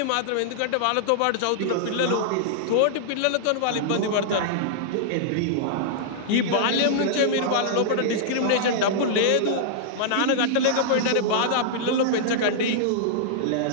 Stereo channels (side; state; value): both; different; correlation -0.02